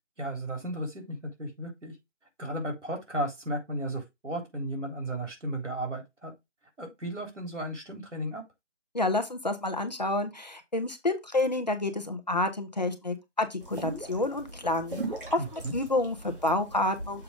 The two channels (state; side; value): normal; both; correlation 0.09